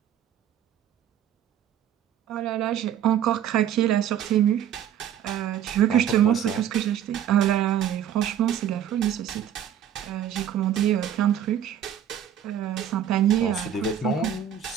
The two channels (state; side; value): quieter; left; 9.9 dB